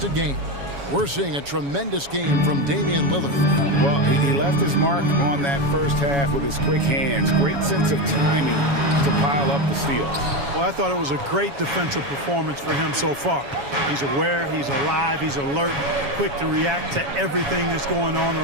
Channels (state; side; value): late; left; 7.2 ms